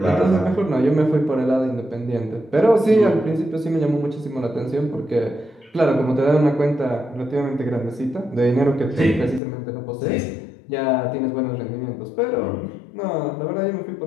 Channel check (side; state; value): right; drops out; at 9.4 s